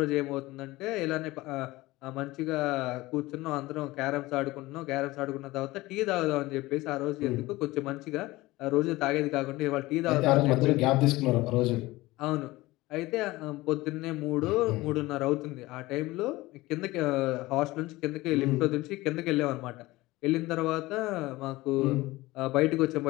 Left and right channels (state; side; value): quieter; right; 19.4 dB